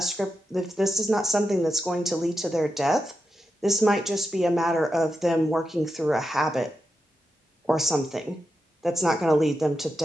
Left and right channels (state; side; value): normal; both; correlation 0.88